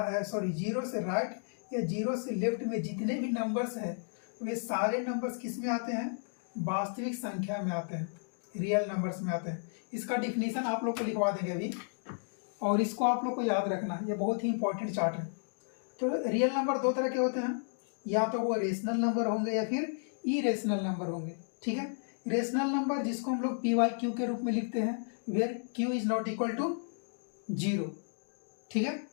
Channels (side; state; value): right; silent; digital silence